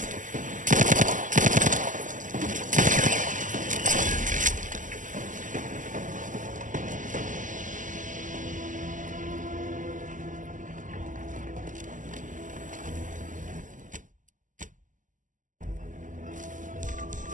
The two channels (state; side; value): late; left; 0.37 ms